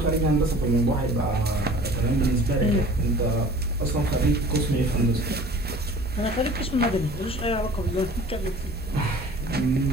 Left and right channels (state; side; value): normal; both; correlation 0.46